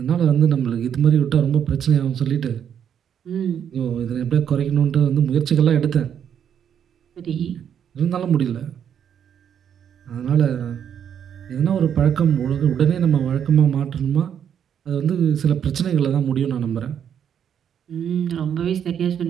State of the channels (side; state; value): left; quieter; 8.6 dB